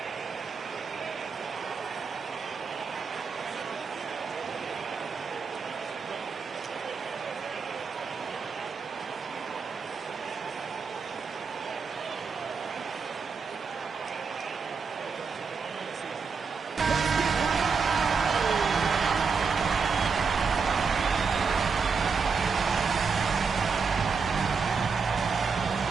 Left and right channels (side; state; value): left; quieter; 5.3 dB